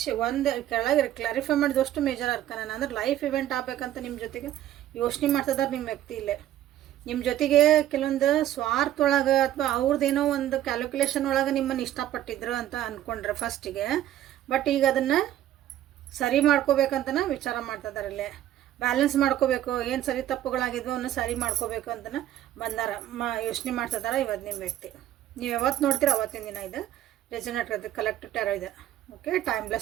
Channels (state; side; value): quieter; left; 12.5 dB